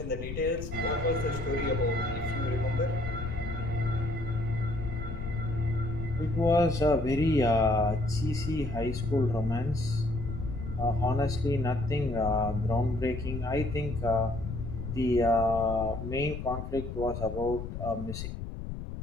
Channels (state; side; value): noise; left; rumble, 7 dB below the sound